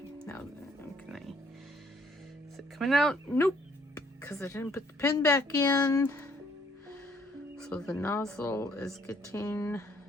now can I? Is it coming out? Nope, because I didn't put the pin back in. So the nozzle is getting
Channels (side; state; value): both; normal; correlation 0.64